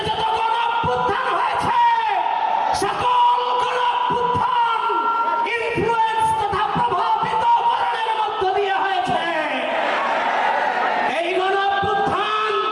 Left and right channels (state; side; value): identical; both; correlation 1.00